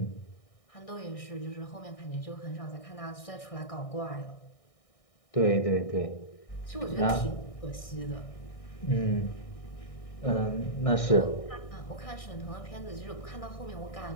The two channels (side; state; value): right; late; 1.6 ms